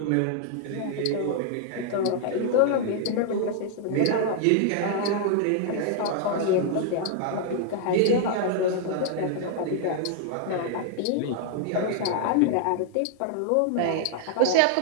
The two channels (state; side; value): different; both; correlation 0.00